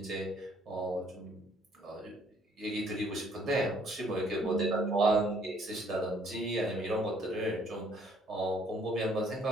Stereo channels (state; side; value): normal; both; correlation 0.63